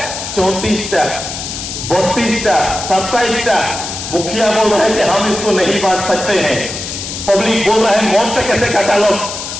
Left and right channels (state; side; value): noise; left; hiss, 7 dB below the sound